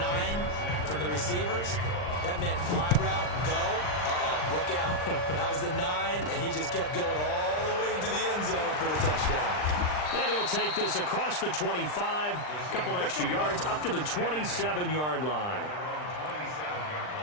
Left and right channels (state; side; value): late; right; 39 ms